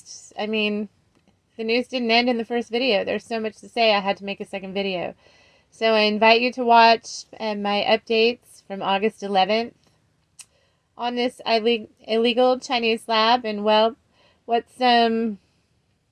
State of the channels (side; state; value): both; identical; correlation 1.00